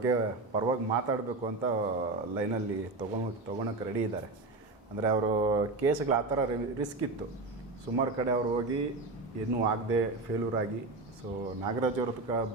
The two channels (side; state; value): left; quieter; 3.4 dB